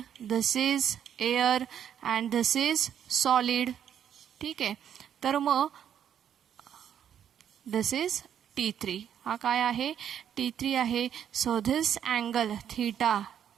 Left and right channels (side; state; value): left; quieter; 9.3 dB